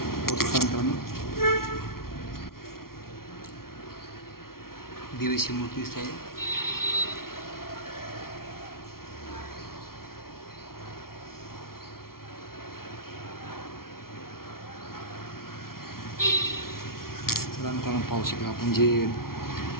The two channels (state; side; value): late; right; 0.93 ms